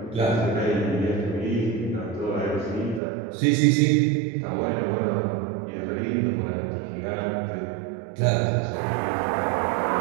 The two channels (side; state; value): left; drops out; at 3.0 s